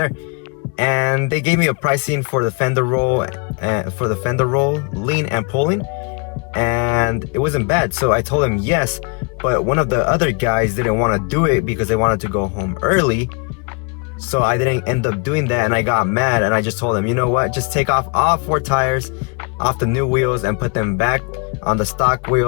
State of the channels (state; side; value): quieter; right; 33.2 dB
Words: And they gave me a pricing for the fender roll, lean and pulling, and it wasn't bad. So I told him yes, but one of the other guys didn't want to do it because they wanted to go home early. So I didn't end up doing that, and I got mad, and I just told him, you know what, just take off all 4 tires off the new wheels and put them back on the stock